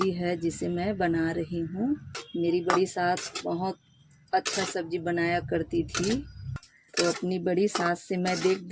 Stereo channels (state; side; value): identical; both; correlation 1.00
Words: है जिसे मैं बना रही हूँ। मेरी बड़ी सास बहुत अच्छा सब्जी बनाया करती थी। तो अपनी बड़ी सास से मैं देख